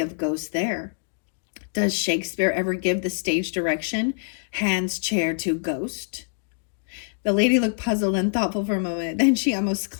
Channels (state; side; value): silent; right; digital silence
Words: of ghosts there. Does Shakespeare ever give the stage direction, hands chair to ghost? The lady looked puzzled and thoughtful for a moment. Then she almost